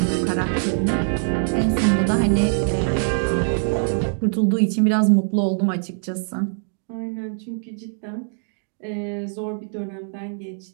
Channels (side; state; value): left; silent; digital silence